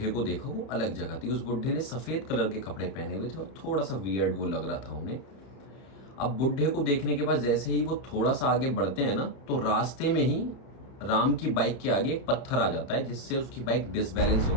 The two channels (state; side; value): late; right; 31 ms